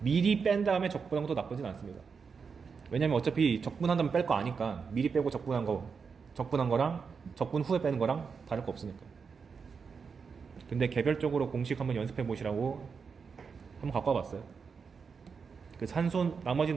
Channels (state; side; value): quieter; left; 5.6 dB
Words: 뺀 다음에 적분한 것도 나쁘진 않습니다. 왜냐면 어차피 적분한 다음에 뺄 거 아니까 미리 빼고 적분한 거랑 적분 후에 빼는 거랑 다를 거 없으니까. 근데 개별적으로 공식 한번 연습해 보시라고 한번 갖고 와봤어요. 그 나머지는